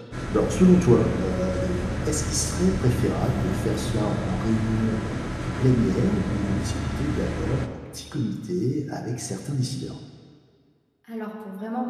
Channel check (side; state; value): both; identical; correlation 1.00